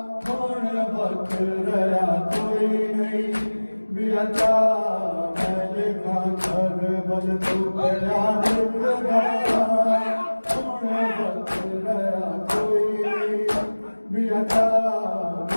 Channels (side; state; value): both; inverted; correlation -1.00